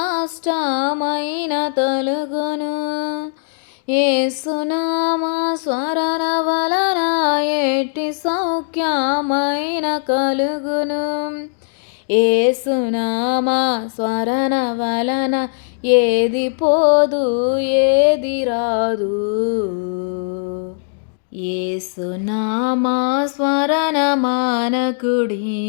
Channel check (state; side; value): silent; right; digital silence